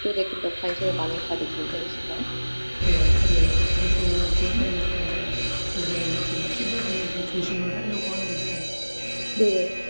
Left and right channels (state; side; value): inverted; both; correlation -1.00